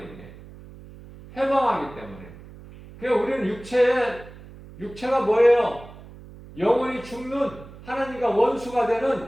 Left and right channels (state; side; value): noise; right; hum, 18 dB below the sound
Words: 해방하기 때문에. 그러니까 우리는 육체가 뭐예요? 영원히 죽는, 하나님과 원수가